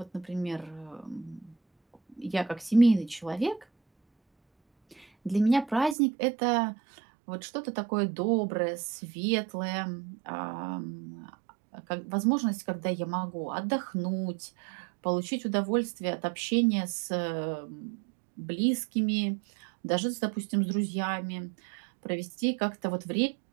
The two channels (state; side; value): drops out; left; at 6.0 s